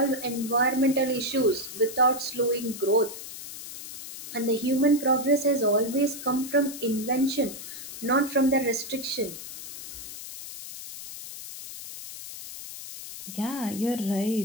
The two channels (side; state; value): left; noise; hiss, 11 dB below the sound